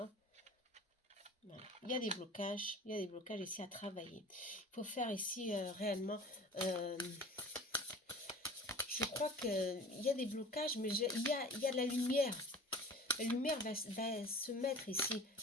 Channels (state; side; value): normal; both; correlation 0.41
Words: Voilà. Il y a des blocages. Il y a des blocages ici à travailler. Il faut faire ici réellement... je crois qu'il y a des blocages, mais il y a de la lumière. La lumière va se mettre ici,